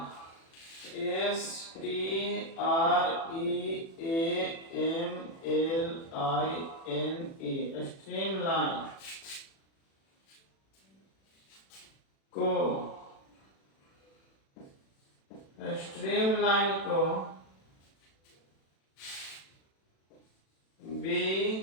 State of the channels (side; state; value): right; late; 36 ms